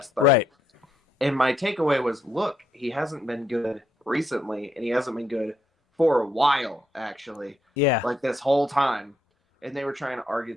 30. Right. And my takeaway was, look, he hasn't been good recently, and he hasn't been good for a while, actually. Yeah. Like, this whole time. And they were trying to argue.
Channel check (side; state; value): both; normal; correlation 0.76